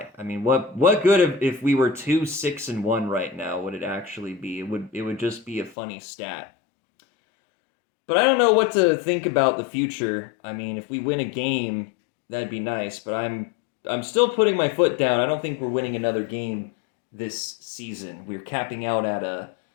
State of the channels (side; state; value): right; drops out; at 5.8 s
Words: I mean, what good if we were 2-6-1 right now would it actually be? It would just be a funny stat. But I don't know what to think about the future. I mean, if we win a game, that'd be nice, but I'm still putting my foot down. I don't think we're winning another game this season. We're capping out at a